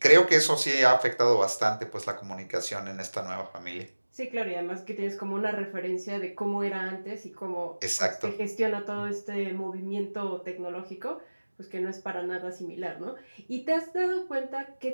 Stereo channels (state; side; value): inverted; both; correlation -1.00